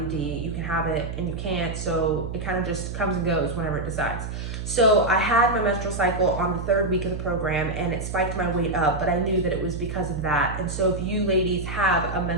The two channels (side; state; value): right; noise; hum, 6 dB below the sound